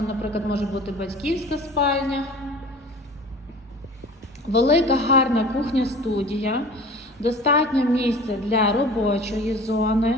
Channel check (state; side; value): normal; both; correlation 0.42